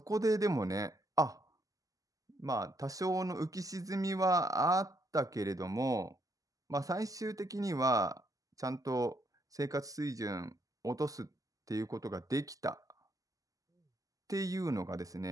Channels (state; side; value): late; left; 0.17 ms